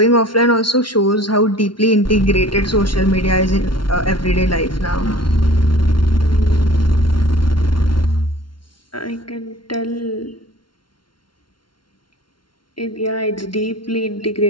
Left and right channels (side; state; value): right; late; 0.73 ms